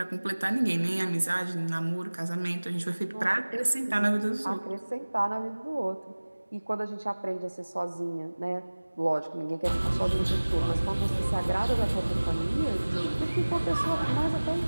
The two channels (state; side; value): inverted; both; correlation -1.00